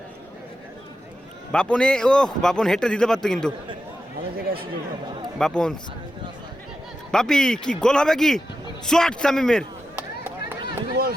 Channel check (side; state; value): both; normal; correlation 0.89